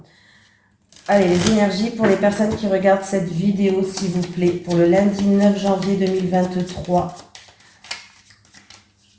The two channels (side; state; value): both; identical; correlation 1.00